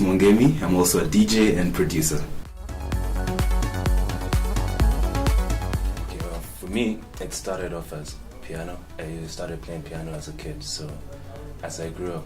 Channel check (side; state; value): both; identical; correlation 1.00